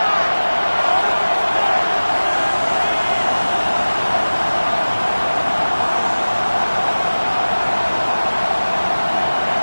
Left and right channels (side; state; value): both; inverted; correlation -1.00